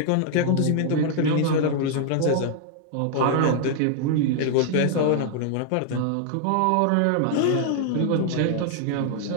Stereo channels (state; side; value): different; both; correlation 0.00